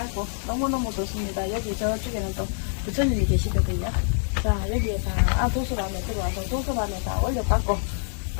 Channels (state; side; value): silent; right; 61 dB below the other